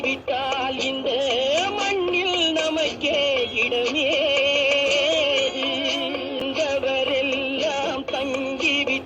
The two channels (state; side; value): identical; both; correlation 1.00